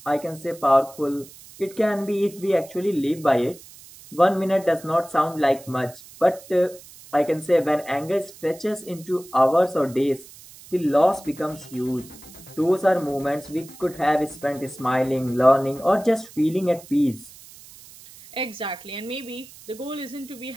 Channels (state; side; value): noise; right; hiss, 20 dB below the sound